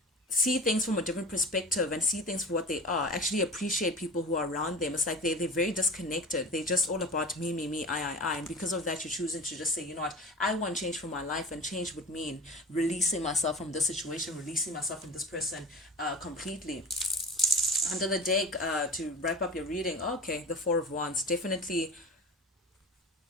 see things from a different perspective and see things for what they are, actually appreciate people who are around them. It's like they're very disconnected. They're just all about me, I. And because of that, you're choosing to just say, you know what, I want change for my life, and change would mean releasing myself from this situation, releasing myself from this person completely. Under the deck, to wrap up your reading, okay, the Four of Wands. Definitely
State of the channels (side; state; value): both; normal; correlation 0.35